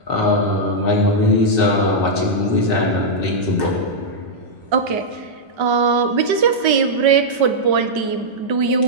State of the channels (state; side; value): late; left; 1.3 ms